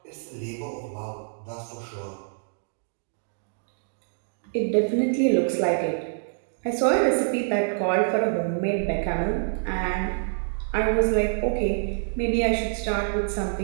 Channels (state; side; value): silent; left; digital silence